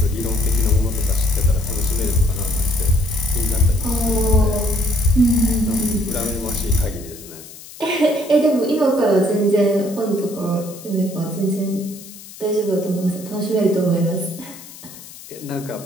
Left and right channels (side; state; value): left; noise; hiss, 17 dB below the sound